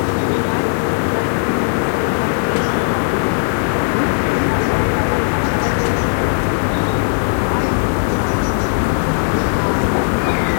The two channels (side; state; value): right; silent; 63 dB below the other